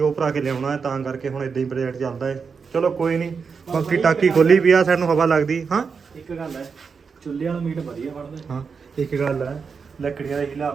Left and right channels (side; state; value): left; quieter; 5.6 dB